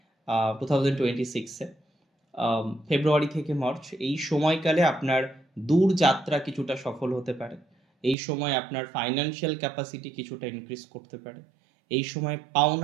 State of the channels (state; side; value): drops out; left; at 8.2 s